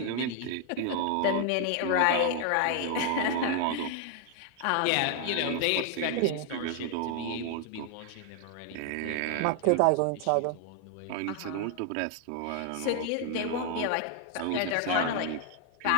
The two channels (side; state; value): both; different; correlation 0.00